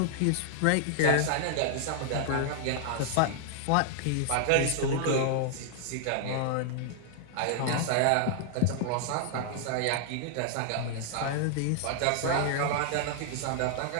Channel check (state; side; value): different; both; correlation -0.01